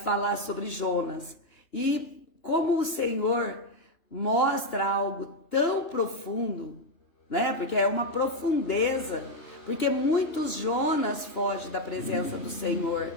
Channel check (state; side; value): late; right; 2.9 ms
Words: falar sobre Jonas. E como o Senhor mostra algo tão profundo, né? Porque é uma profundeza. Porque muitos Jonas fogem da presença do Senhor.